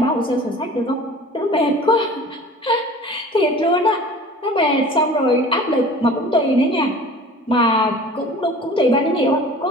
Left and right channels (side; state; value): both; normal; correlation 0.43